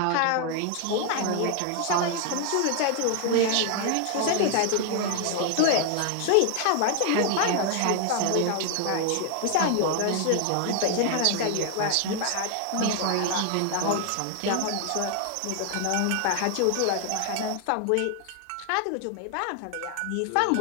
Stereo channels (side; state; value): both; different; correlation 0.00